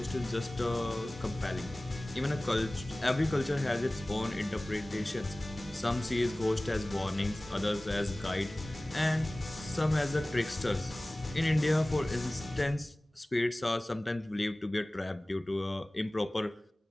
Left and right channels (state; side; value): normal; both; correlation 0.98